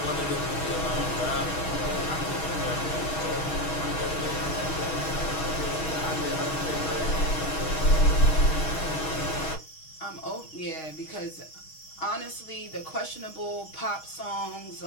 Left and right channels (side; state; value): right; late; 6.3 ms